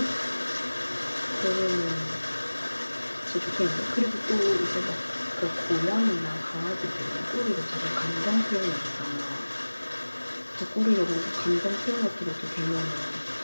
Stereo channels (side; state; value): both; inverted; correlation -1.00